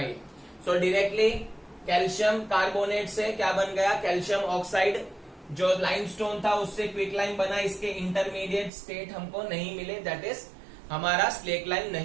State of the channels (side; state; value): left; drops out; at 8.7 s